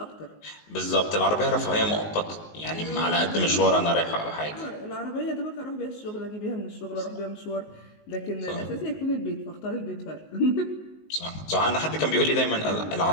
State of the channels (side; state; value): right; late; 19 ms